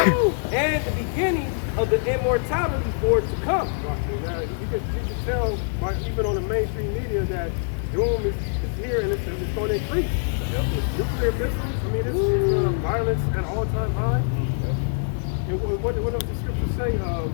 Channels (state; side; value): silent; right; digital silence